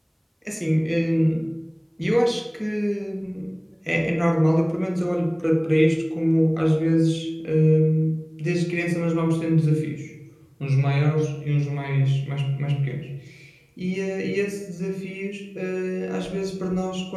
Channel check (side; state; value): both; identical; correlation 1.00